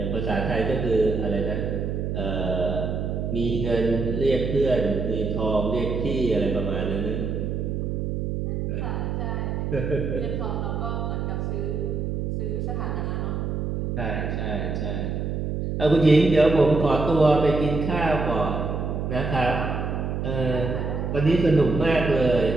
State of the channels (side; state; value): right; noise; hum, 2 dB below the sound